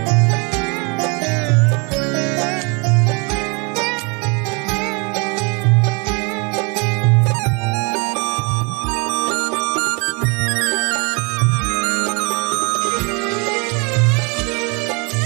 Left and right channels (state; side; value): quieter; left; 31.5 dB